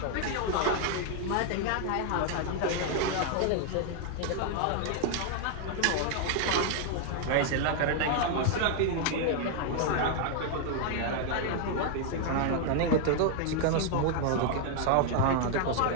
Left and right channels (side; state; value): both; different; correlation 0.00